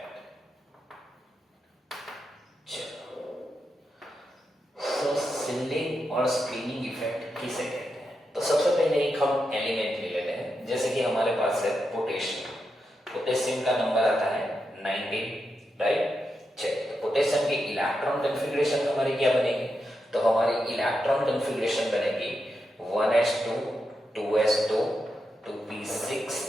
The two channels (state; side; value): normal; both; correlation 0.86